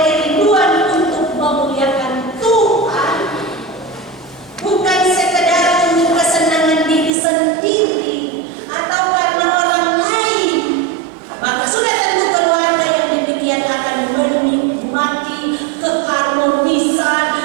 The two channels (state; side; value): drops out; left; at 7.1 s